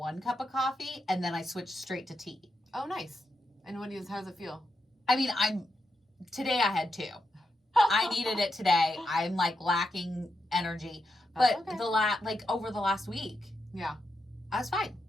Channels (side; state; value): both; normal; correlation 0.85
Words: cup of coffee and then I switched straight to tea. Oh, nice. And how does it feel? I mean, today I had 2. I needed it today. I'm like lacking energy. But okay. Over the last week, yeah, I was fine.